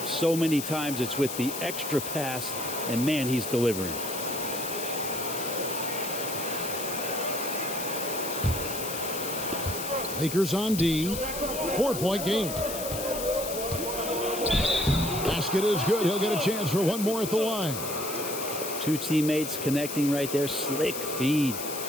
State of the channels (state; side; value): noise; left; hiss, 6 dB below the sound